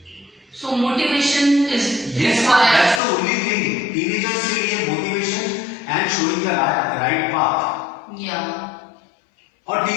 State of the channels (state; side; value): drops out; right; at 3.0 s